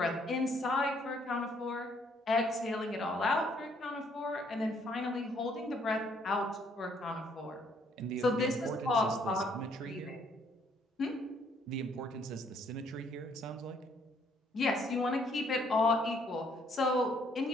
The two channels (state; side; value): normal; both; correlation 0.66